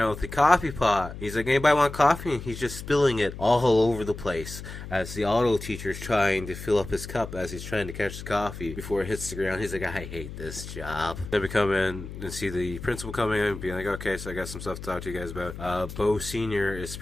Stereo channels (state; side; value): noise; left; hum, 11 dB below the sound